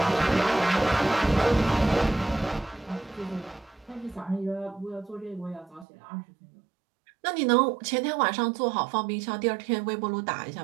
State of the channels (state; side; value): drops out; left; at 5.9 s